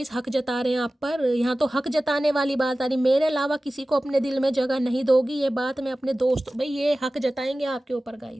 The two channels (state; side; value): normal; both; correlation 0.96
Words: हक जता रहे हैं आप पर। यहाँ तो हक जताने वाली बात आ रही, मेरे अलावा किसी को अपने दिल में जगह नहीं दोगी, ये बात मैं अपने दोस्त भाई ये हक जताएंगे आपके ऊपर